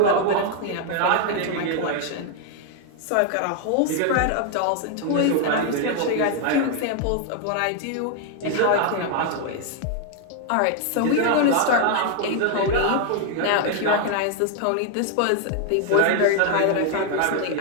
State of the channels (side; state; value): both; different; correlation 0.00